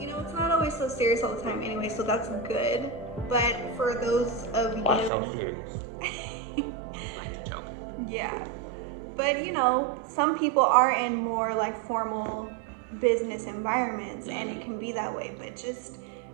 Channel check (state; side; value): drops out; left; at 5.1 s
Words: it's not always so serious all the time anyway, so that's good. But for those of you, why so serious? Like to joke. Yeah, but some people are in more like formal business environments, and it can be that way. But just